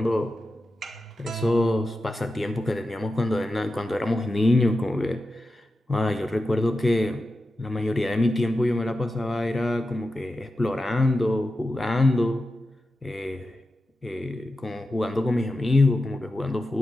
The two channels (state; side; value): normal; both; correlation 0.91